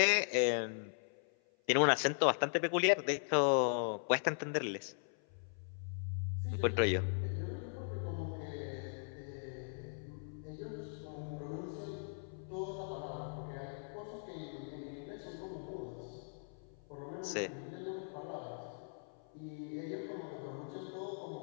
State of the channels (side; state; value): right; silent; 52 dB below the other